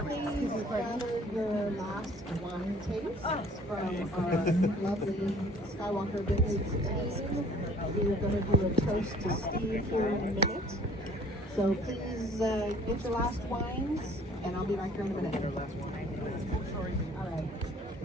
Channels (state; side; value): normal; both; correlation 0.54